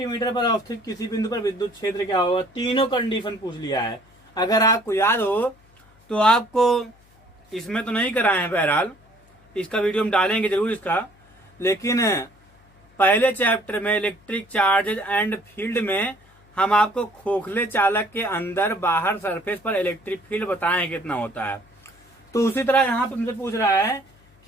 पर अवस्थित किसी बिंदु पर विद्युत क्षेत्र क्या होगा। तीनों कंडीशन पूछ लिया है। अगर आपको याद हो तो आपको इसमें तो नहीं कराए हैं, बहरहाल इसका वीडियो हम डालेंगे जरूर इसका, लेकिन पहले चैप्टर में इलेक्ट्रिक चार्जेज एंड फील्ड में हम आपको खोखले चालक के अंदर बाहर सरफेस पर इलेक्ट्रिक फील्ड बताएं कितना होता है। तो उसी तरह यहाँ पे मुझे पूछ रहा है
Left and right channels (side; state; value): left; noise; hum, 30 dB below the sound